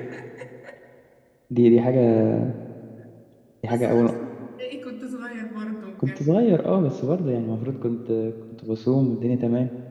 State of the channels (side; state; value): both; identical; correlation 1.00